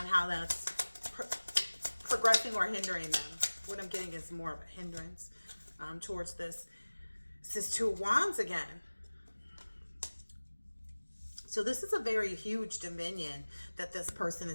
how that's progressing or hindering them. What I'm getting is more of a hindrance towards this. This is Two of Wands again. So this is a very huge dominion that this person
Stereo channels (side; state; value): both; inverted; correlation -1.00